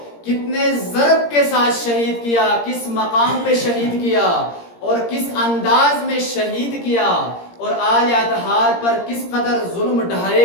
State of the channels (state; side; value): late; right; 17 ms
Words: کتنے ضرب کے ساتھ شہید کیا، کس مقام پہ شہید کیا اور کس انداز میں شہید کیا، اور آل اطہار پر کس قدر ظلم